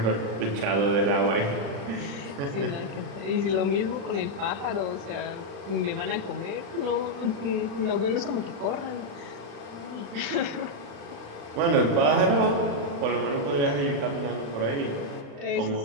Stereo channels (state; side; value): late; left; 35 ms